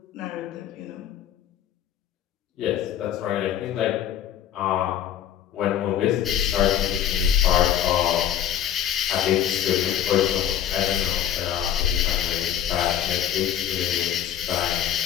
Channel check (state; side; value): quieter; right; 10.6 dB